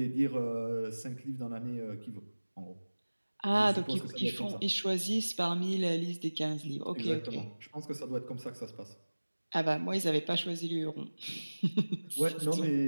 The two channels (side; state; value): both; inverted; correlation -1.00